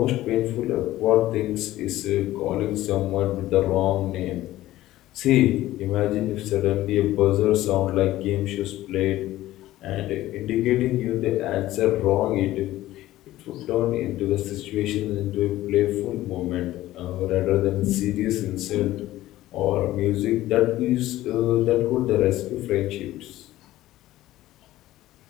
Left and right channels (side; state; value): right; quieter; 15.4 dB